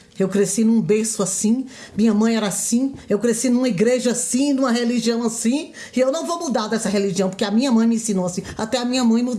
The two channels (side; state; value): both; identical; correlation 1.00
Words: Eu cresci num berço assim, minha mãe era assim, eu cresci numa igreja assim, numa religião assim, e eu não vou mudar dessa religião, porque a minha mãe me ensinou assim. Até a minha mãe